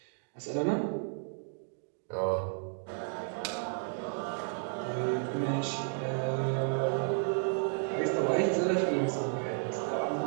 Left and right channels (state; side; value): silent; left; 56 dB below the other